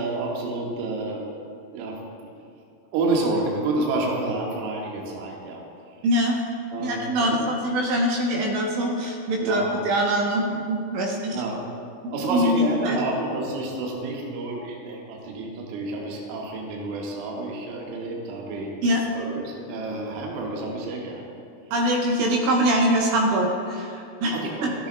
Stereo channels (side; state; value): left; late; 20 ms